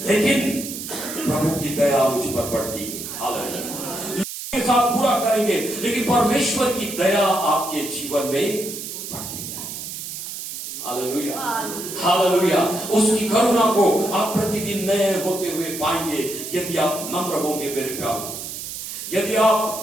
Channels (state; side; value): noise; right; hiss, 8 dB below the sound